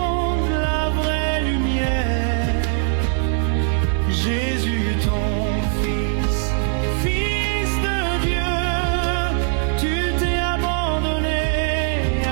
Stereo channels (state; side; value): silent; left; 57 dB below the other